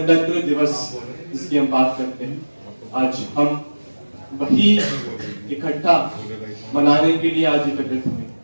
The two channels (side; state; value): both; inverted; correlation -1.00